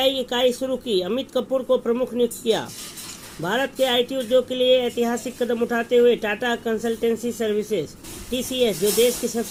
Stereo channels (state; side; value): identical; both; correlation 1.00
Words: इकाई शुरू की, अमित कपूर को प्रमुख नियुक्त किया। भारत के आईटी उद्योग के लिए ऐतिहासिक कदम उठाते हुए टाटा कंसल्टेंसी सर्विसेज टीसीएस, जो देश की